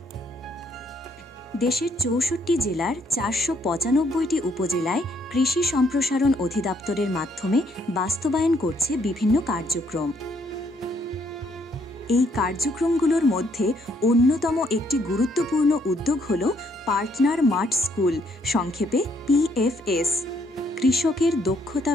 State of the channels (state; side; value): normal; both; correlation 0.69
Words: দেশের ৬৪ জেলার ৪৯৫টি উপজেলায় কৃষি সম্প্রসারণ অধিদপ্তরের মাধ্যমে বাস্তবায়ন করছে বিভিন্ন কার্যক্রম। এই কার্যক্রমগুলোর মধ্যে অন্যতম একটি গুরুত্বপূর্ণ উদ্যোগ হল পার্টনার মাঠ স্কুল, সংক্ষেপে PFS। কৃষকের দক্ষতা